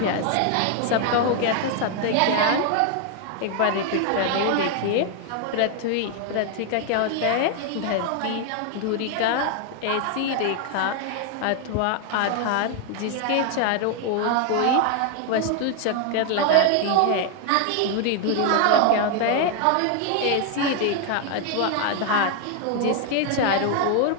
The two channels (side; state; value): both; different; correlation 0.00